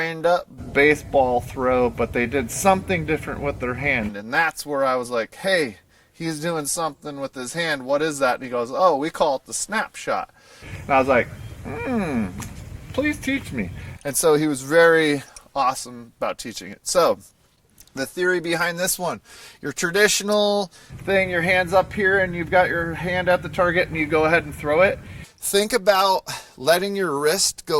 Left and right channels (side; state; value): both; identical; correlation 1.00